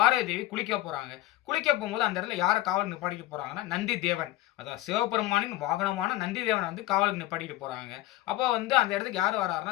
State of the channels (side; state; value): right; quieter; 16.7 dB